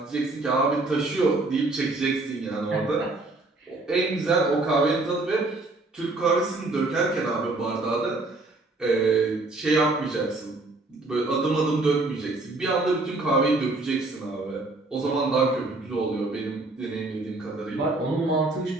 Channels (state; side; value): quieter; left; 3.1 dB